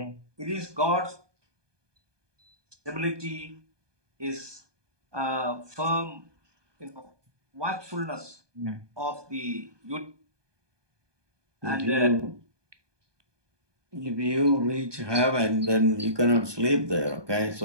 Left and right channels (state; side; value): late; left; 1.2 ms